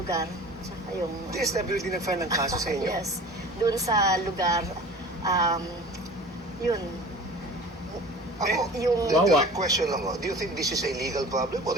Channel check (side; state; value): both; normal; correlation 0.40